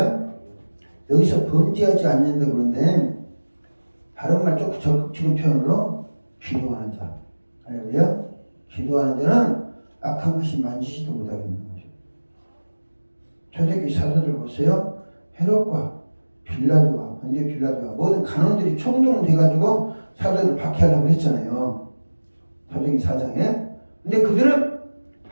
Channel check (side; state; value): both; inverted; correlation -1.00